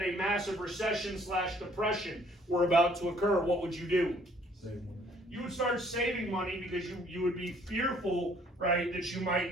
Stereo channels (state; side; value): normal; both; correlation 0.60